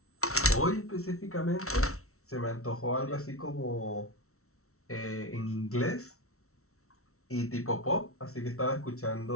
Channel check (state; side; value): late; right; 0.63 ms